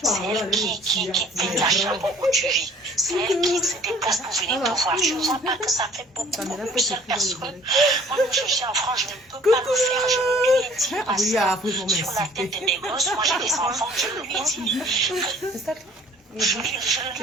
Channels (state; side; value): normal; both; correlation 0.53